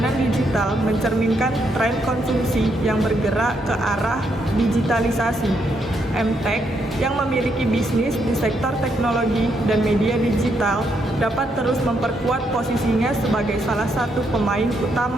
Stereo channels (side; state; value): both; normal; correlation 0.77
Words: digital mencerminkan tren konsumsi yang bergerak ke arah digitalisasi. MTech yang memiliki bisnis di sektor teknologi dan media digital dapat terus memperkuat posisinya sebagai salah satu pemain